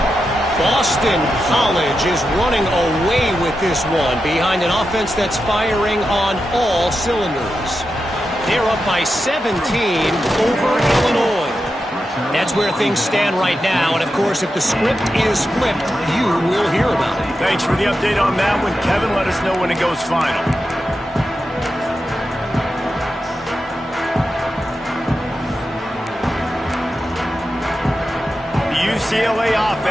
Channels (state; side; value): normal; both; correlation 0.89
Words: Boston College is running away with this one behind an offense that's firing on all cylinders. They're up by 17 over Illinois. That's where things stand right now, and of course, if the script is flipped, you will hear about it. Thanks for the update on that one, Kevin. Let us know when it goes final. UCLA